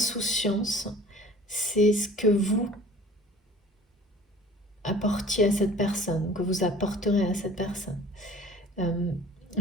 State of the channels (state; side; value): normal; both; correlation 0.47